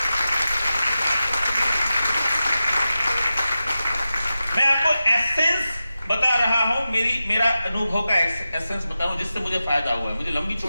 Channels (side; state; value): both; inverted; correlation -0.93